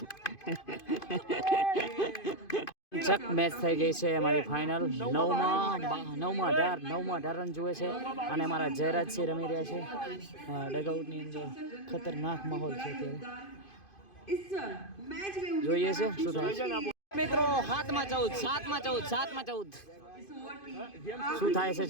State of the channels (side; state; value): right; late; 2.5 ms